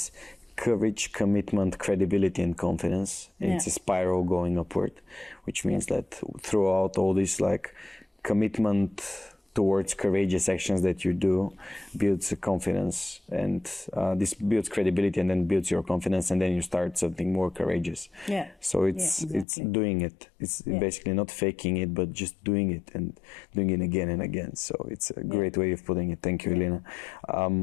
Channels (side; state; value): right; drops out; at 19.5 s